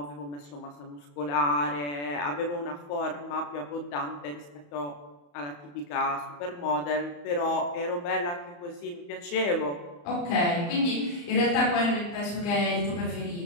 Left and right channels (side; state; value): right; late; 34 ms